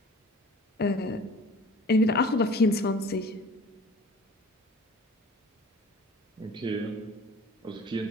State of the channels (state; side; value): normal; both; correlation 0.45